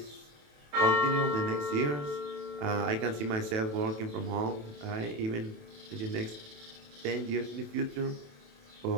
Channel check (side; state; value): left; late; 27 ms